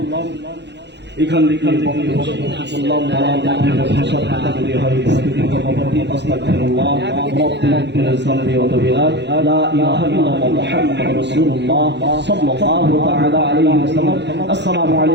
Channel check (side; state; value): left; late; 0.50 ms